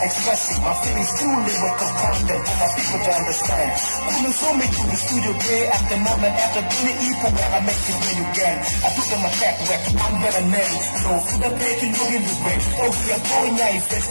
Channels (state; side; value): inverted; both; correlation -1.00